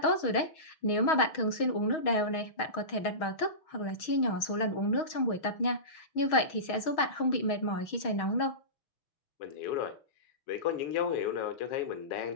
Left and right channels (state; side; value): late; right; 6.3 ms